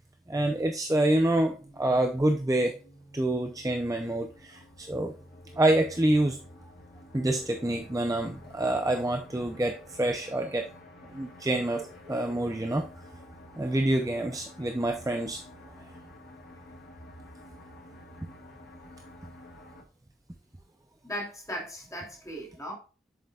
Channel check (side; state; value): both; normal; correlation 0.81